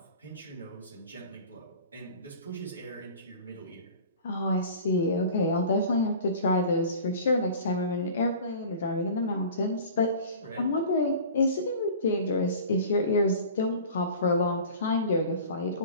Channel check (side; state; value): both; inverted; correlation -0.40